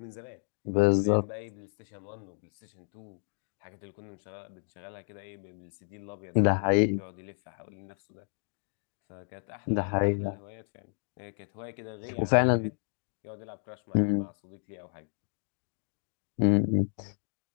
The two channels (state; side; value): silent; right; digital silence